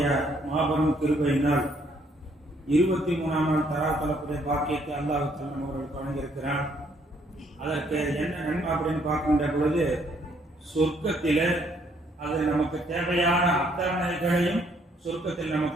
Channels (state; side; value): normal; both; correlation 0.67